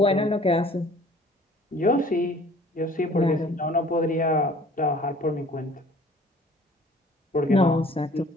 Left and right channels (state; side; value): normal; both; correlation 0.52